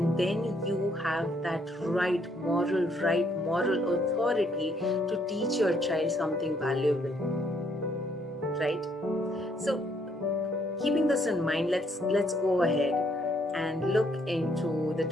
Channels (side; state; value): both; normal; correlation 0.69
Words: then you have that right moral authority to teach your child something valuable, right? So keeping this in mind, let's go ahead and look into the